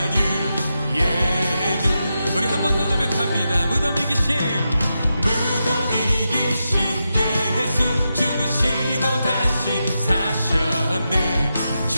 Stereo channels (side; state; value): both; inverted; correlation -0.88